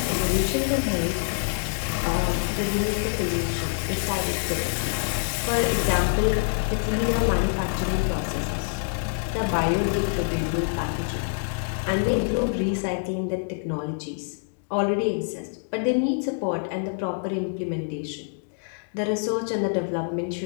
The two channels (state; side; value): silent; right; digital silence